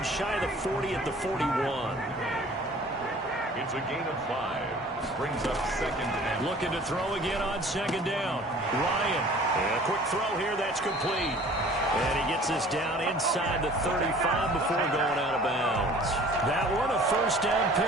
shy of the 40 at the 41. It's a gain of 5. Brings up 2nd and... Looking to throw again on 2nd down. Ryan. And a quick throw here. That's complete. And he gets this down inside the 35 before going out of bounds. That one, a 1st down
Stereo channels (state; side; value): normal; both; correlation 0.49